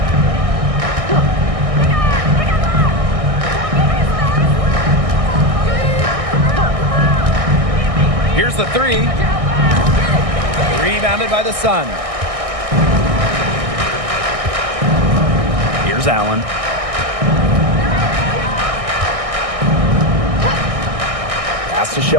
Here's the 3. Rebounded by the Sun. Here's Allen. Pass to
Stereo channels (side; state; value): left; late; 1.6 ms